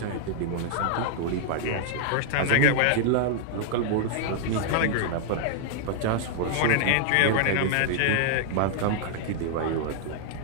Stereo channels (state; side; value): different; both; correlation -0.01